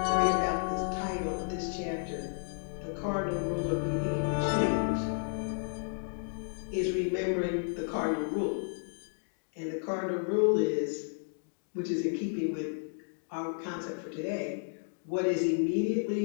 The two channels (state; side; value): silent; right; digital silence